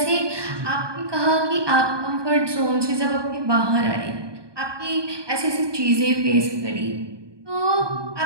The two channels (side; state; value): left; late; 1.2 ms